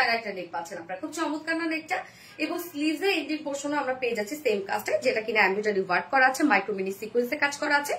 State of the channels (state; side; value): identical; both; correlation 1.00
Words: একটা নেক পাচ্ছেন আপনারা, খুব চমৎকার না নেকটা। এবং স্লিভসে এন্ডিং পোর্শনে আমরা পেয়ে যাচ্ছি সেম কাজটা, যেটা কিনা এমব্রয়ডারি ওয়ার্ক করা আছে, মাইক্রোমিনি সিকোয়েন্সে কাজ করা আছে